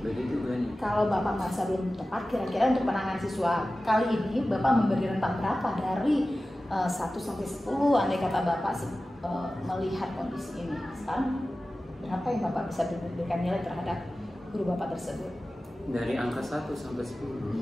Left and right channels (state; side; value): normal; both; correlation 0.95